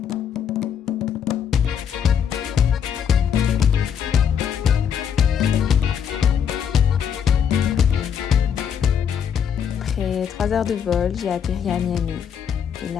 Après 3 heures de vol, j'ai atterri à Miami. Et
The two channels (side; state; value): right; quieter; 8.0 dB